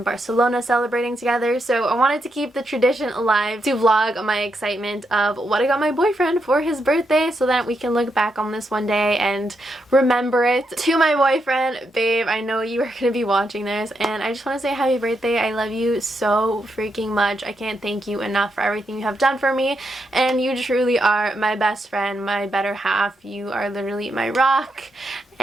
Barcelona celebrating together, so I wanted to keep the tradition alive to vlog my excitement of what I got my boyfriend for his birthday so that we can look back on this one day and remember it. To my boyfriend, babe, I know you are going to be watching this, and I just want to say happy birthday. I love you so freaking much. I can't thank you enough for everything you have done for me, and you truly are my best friend, my better half. You are literally my rock,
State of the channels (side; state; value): both; normal; correlation 0.82